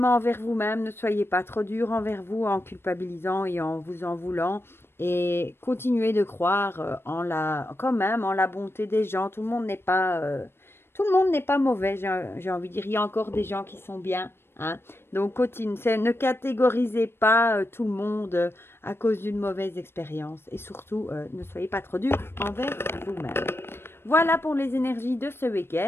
envers vous-même. Ne soyez pas trop dur envers vous en culpabilisant et en vous en voulant. Et continuez de croire quand même en la bonté des gens. Tout le monde n'est pas... tout le monde n'est pas mauvais, j'ai envie de dire. Il y a encore des gens qui sont bien. Hein. Donc, ne catégorisez pas tout le monde à cause d'une mauvaise expérience. Et surtout, ne soyez pas trop dur envers vous-même. Voilà pour les énergies de ce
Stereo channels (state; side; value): late; right; 0.12 ms